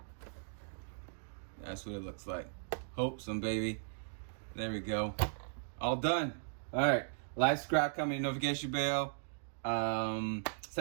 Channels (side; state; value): left; silent; digital silence